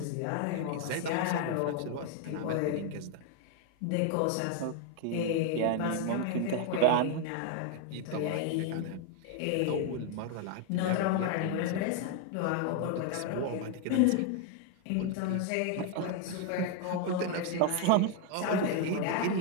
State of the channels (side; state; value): both; different; correlation 0.01